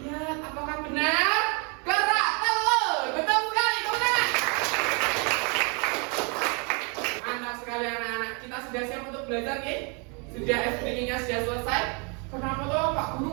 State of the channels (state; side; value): quieter; left; 34.1 dB